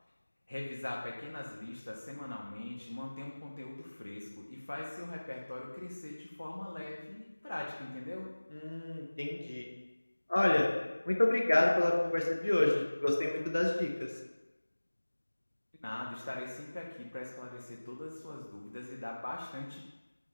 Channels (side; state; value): both; inverted; correlation -1.00